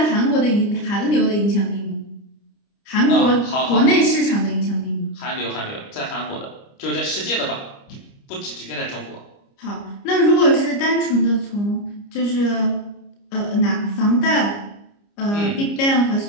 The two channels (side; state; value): right; late; 29 ms